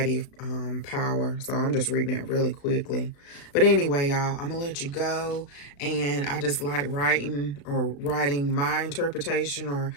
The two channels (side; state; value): right; late; 35 ms